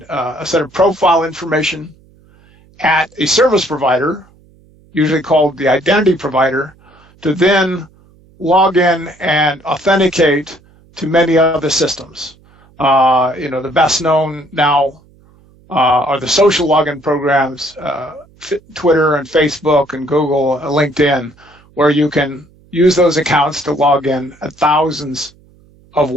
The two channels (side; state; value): right; noise; hum, 29 dB below the sound